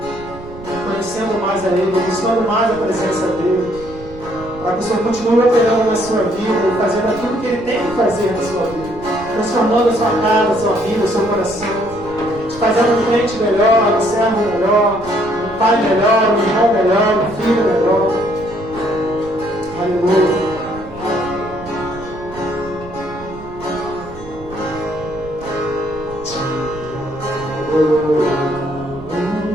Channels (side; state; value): right; noise; rumble, 16 dB below the sound